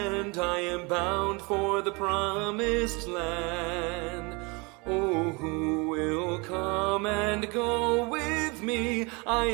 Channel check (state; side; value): quieter; left; 28.5 dB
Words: I am bound for the promised land. Oh, who will come and go with me? I